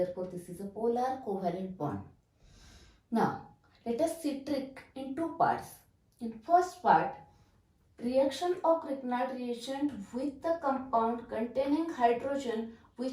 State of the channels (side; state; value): both; identical; correlation 1.00